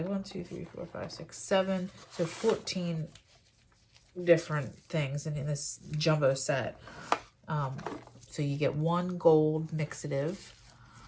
1, 2, 3, 4, 5, 6, 7. So 14 different things in this jumbo set. So you get one gold mixative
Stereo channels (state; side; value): identical; both; correlation 1.00